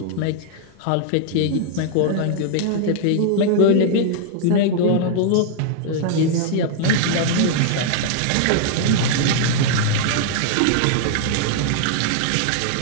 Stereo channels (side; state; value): both; different; correlation -0.01